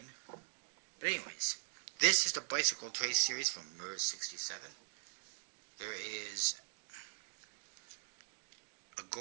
But anyways, this is the Bicycle Trace series from Merz 67. There is a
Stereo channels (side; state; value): left; silent; digital silence